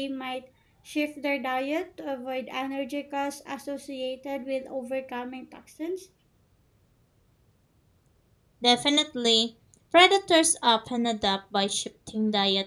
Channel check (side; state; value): both; identical; correlation 1.00